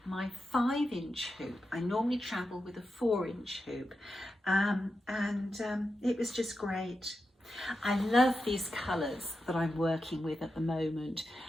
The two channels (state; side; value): normal; both; correlation 0.89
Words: my 5-inch hoop. I normally travel with a 4-inch hoop, and it was just great. I love these colours that I'm working with at the moment.